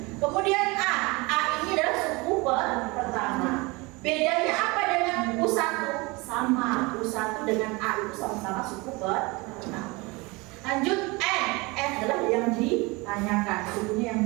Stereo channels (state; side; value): quieter; left; 25.2 dB